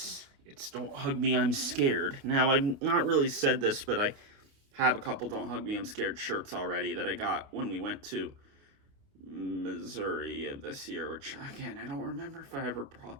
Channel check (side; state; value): left; late; 28 ms